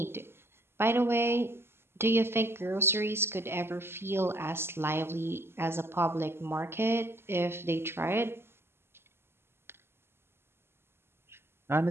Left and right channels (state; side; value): late; left; 0.12 ms